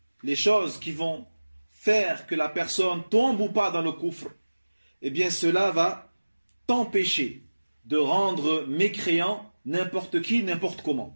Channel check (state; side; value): inverted; both; correlation -1.00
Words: les choses qui vont faire que la personne tombe ou pas dans le coufre, eh bien cela va t'empêcher de rendre mécréant n'importe qui, n'importe